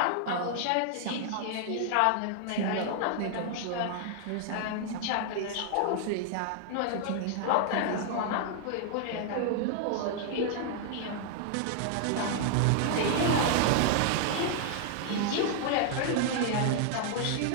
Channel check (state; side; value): different; both; correlation -0.01